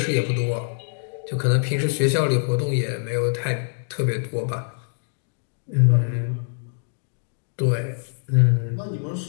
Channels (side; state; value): right; silent; digital silence